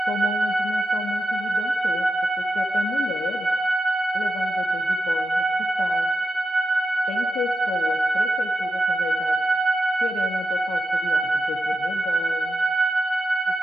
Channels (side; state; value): both; normal; correlation 0.88